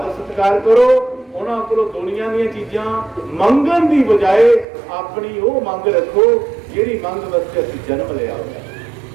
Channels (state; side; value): drops out; left; at 4.7 s